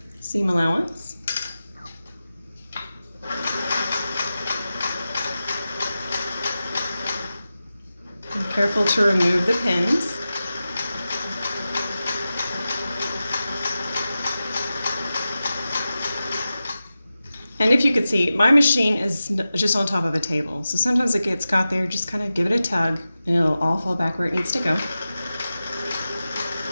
seam allowance. Be careful to remove the pins. And if you could see, my machine is just on top of a table. So sometimes it gets caught there, just kind of give it a tug and it'll all fall back where it needs to go.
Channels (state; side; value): inverted; both; correlation -0.94